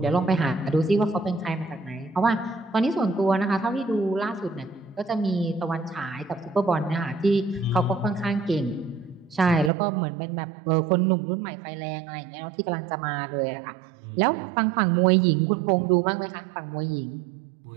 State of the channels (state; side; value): drops out; left; at 9.7 s